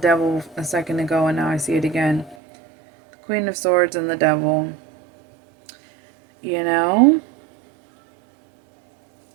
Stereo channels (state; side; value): drops out; left; at 2.4 s